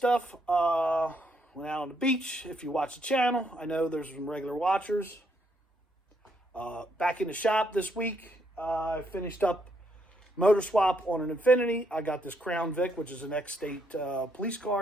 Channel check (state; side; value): normal; both; correlation 0.74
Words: Went out on the beach. If you watch the channel, I know there's some regular watchers. Back in the shop this week, I finished up motor swap on an Infiniti. I got this Crown Vic, which is an ex-state police